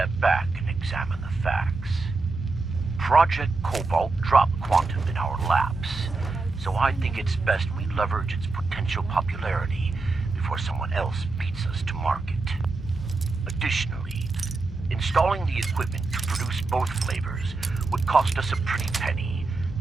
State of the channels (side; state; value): left; quieter; 3.7 dB